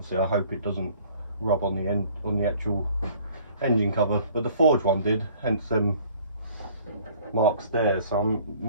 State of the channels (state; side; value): inverted; both; correlation -0.55